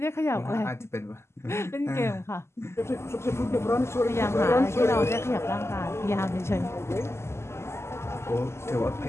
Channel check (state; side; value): late; right; 0.13 ms